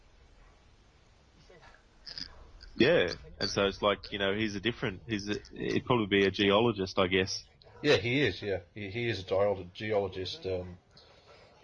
Yeah, and so it's he'd probably be a geologist, I guess. Yeah, he is, yeah. He is a geologist.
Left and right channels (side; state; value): both; identical; correlation 1.00